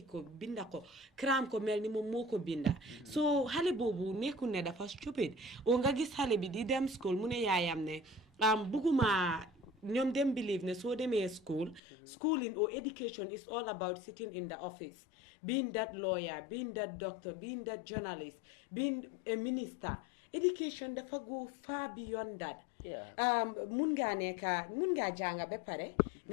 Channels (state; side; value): drops out; right; at 11.8 s